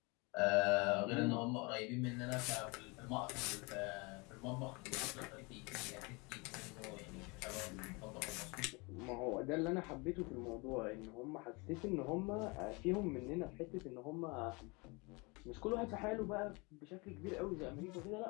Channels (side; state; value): right; quieter; 27.9 dB